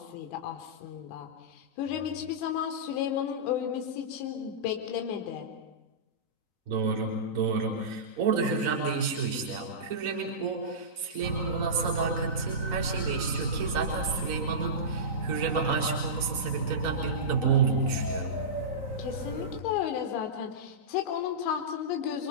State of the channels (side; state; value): left; late; 4.0 ms